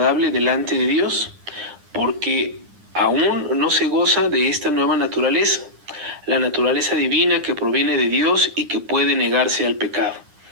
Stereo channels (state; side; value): late; left; 9.9 ms